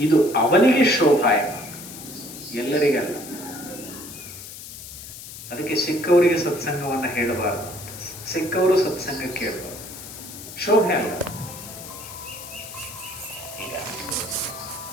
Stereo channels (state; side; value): noise; left; hiss, 13 dB below the sound